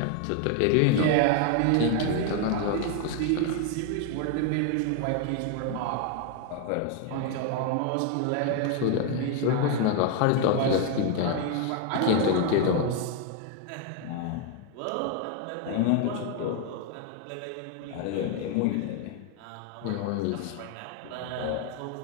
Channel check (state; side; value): different; both; correlation 0.01